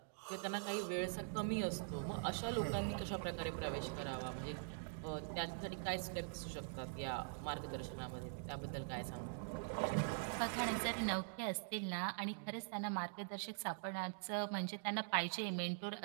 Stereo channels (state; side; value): silent; left; digital silence